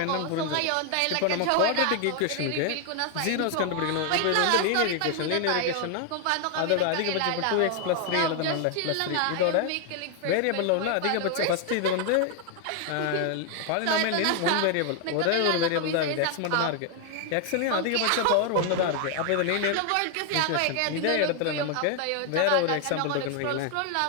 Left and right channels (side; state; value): both; different; correlation 0.00